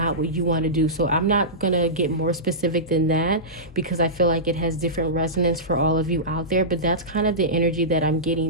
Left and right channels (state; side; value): normal; both; correlation -0.17